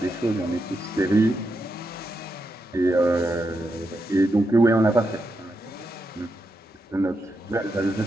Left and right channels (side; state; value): both; normal; correlation 0.84